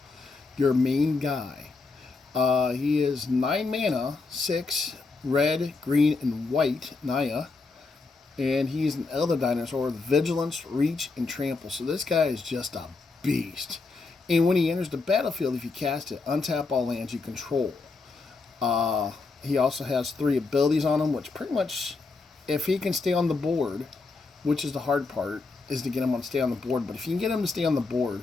your main guy. He is 9 mana, 6 red, green, and white, Naya. And he's an elder dinosaur with vigilance, reach, and trample. So this guy is just a beast. And when he enters the battlefield, if you cast it, untap all lands you control. He also has 3 abilities on him, which pretty much, if he can stay on the board, which is the hard part, is to get him to stay on the board. But if you can get him to stay on the board,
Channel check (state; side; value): quieter; right; 4.0 dB